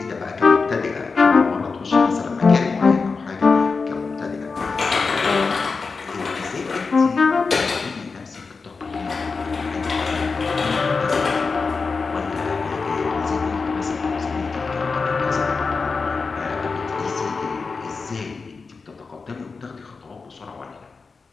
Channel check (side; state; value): right; quieter; 4.6 dB